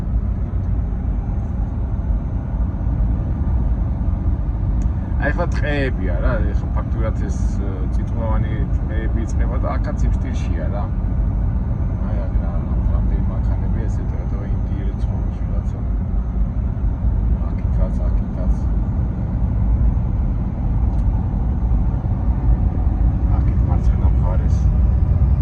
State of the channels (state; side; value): identical; both; correlation 1.00